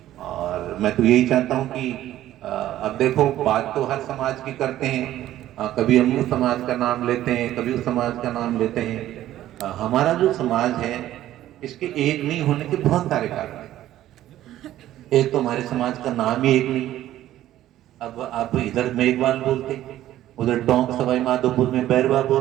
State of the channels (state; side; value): quieter; left; 13.4 dB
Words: और मैं तो यही चाहता हूँ कि अब देखो, बात तो हर समाज की करते हैं, कभी हम उस समाज का नाम लेते हैं, कभी उस समाज का नाम लेते हैं। हमारा जो समाज है इसके एक नहीं होने के बहुत सारे कारण हैं। एक तो हमारे समाज का नाम ही एक नहीं। अब आप इधर मेघवाल बोलते, उधर टोंक सवाई माधोपुर में बैरवा